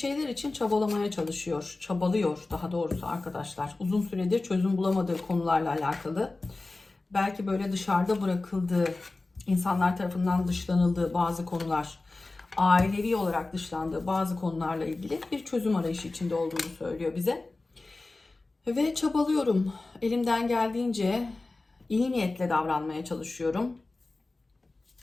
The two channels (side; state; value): right; quieter; 3.3 dB